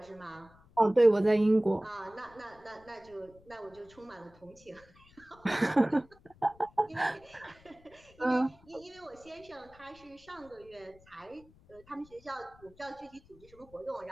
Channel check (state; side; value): noise; left; rumble, 26 dB below the sound